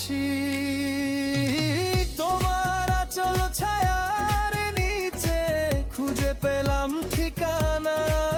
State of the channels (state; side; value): identical; both; correlation 1.00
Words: তোমার আঁচল ছায়ার নিচে খুঁজে পেলাম ঠিকানা,